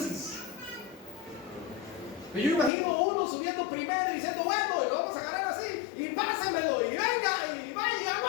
Yo imagino uno subiendo primero y diciendo, bueno, y lo vamos a agarrar así, y pásemelo, y venga, y vaya,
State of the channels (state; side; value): drops out; right; at 2.7 s